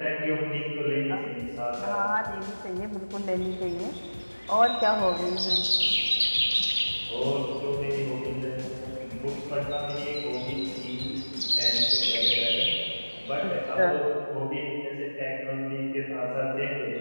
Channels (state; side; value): inverted; both; correlation -1.00